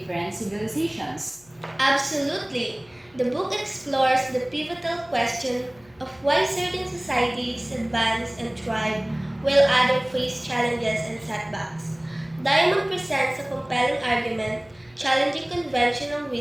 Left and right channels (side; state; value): left; noise; hum, 29 dB below the sound